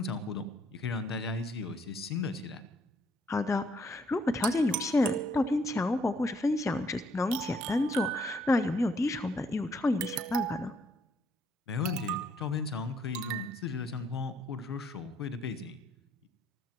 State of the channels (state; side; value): normal; both; correlation 0.69